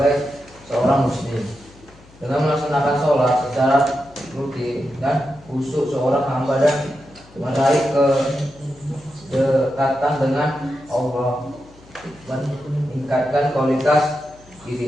seorang muslim. Dengan melaksanakan sholat secara rutin dan khusyuk, seorang hamba dan meraih kedekatan dengan Allah, meningkatkan kualitas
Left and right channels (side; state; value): left; noise; hum, 25 dB below the sound